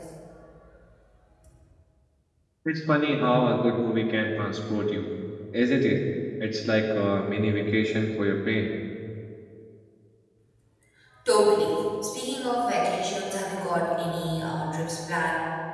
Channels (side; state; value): both; identical; correlation 1.00